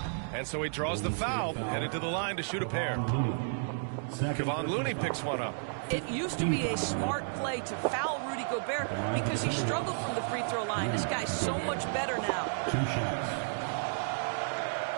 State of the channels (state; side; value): silent; left; digital silence